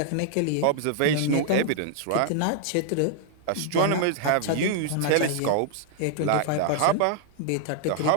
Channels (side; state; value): both; different; correlation -0.01